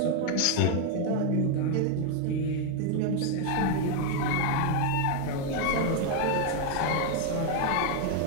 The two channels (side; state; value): both; different; correlation 0.01